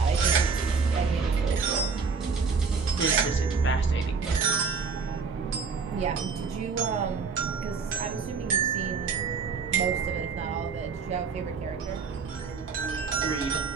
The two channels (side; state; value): left; quieter; 5.1 dB